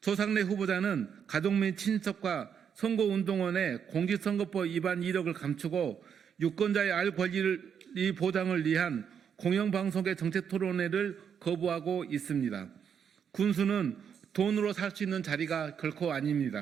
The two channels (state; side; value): quieter; left; 7.7 dB